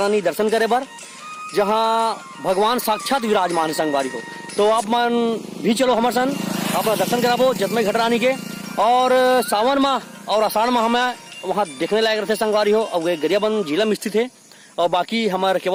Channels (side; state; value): both; identical; correlation 1.00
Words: दर्शन करे बर, जहाँ भगवान साक्षात विराजमान है संगवारी हो। तो आप मन भी चलो हमारे सन अपना दर्शन कराबो जतमई घटरानी के। और सावन माह और आषाढ़ माह में वहाँ देखने लायक रहते संगवारी हो। और गरियाबंद जिला में स्थित है। और बाकी हमारे